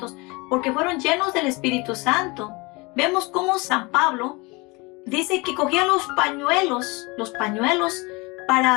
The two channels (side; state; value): right; quieter; 26.0 dB